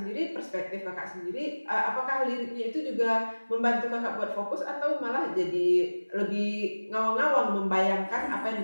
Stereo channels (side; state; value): both; inverted; correlation -1.00